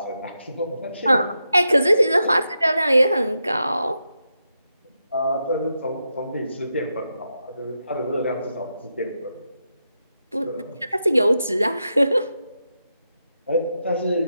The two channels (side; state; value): both; inverted; correlation -0.86